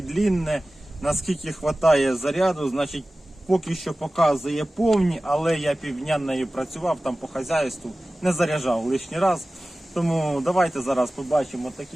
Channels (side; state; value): both; normal; correlation 0.97